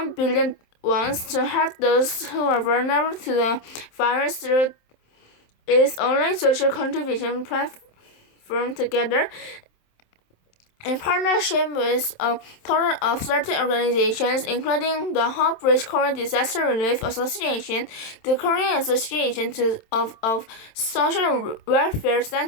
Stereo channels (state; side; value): late; right; 27 ms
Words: billion won to help those who are vulnerable to the virus through its online social contribution platform Together. In partnership with a total of 30 organizations, including the Hope Bridge Korean Disaster Relief Association, the Korean Association of Social Welfare